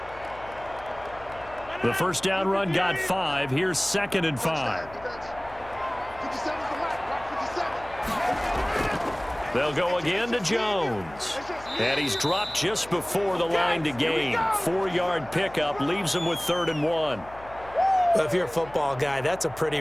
The first down run got 5. Here's 2nd and 5. They'll go again to Jones. And he's dropped just before the line to gain. 4-yard pickup leaves him with 3rd and 1. Well, if you're a football guy, that's a pretty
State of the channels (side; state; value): left; noise; hum, 20 dB below the sound